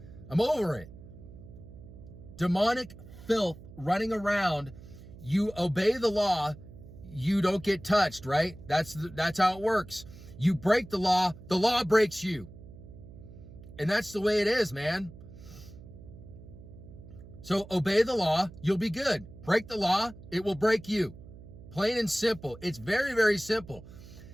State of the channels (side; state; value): right; noise; hum, 17 dB below the sound